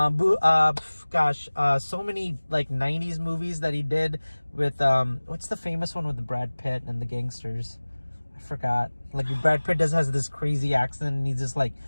many like 90s movies that he did with what's the famous one with the Brad Pitt and the gangsters? I forgot. Like, Brad Pitt has this crazy accent and he's just like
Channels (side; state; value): both; inverted; correlation -1.00